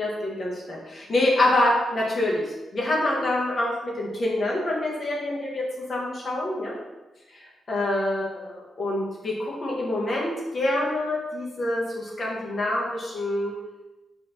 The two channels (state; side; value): normal; both; correlation 0.83